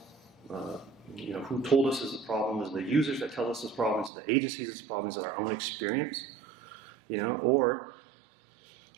Who told us is the problem? Is it the users that tell us this problem? Is it the agencies this problem? Is it our own experience? Or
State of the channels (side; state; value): left; drops out; at 4.1 s